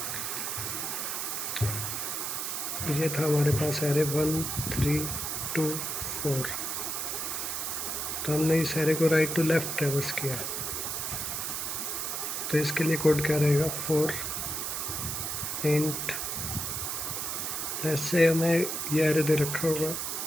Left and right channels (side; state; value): right; noise; hiss, 2 dB below the sound